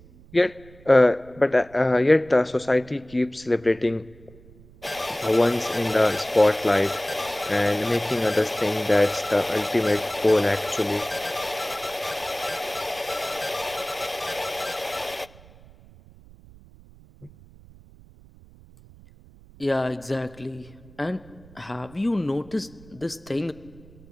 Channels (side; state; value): right; noise; rumble, 23 dB below the sound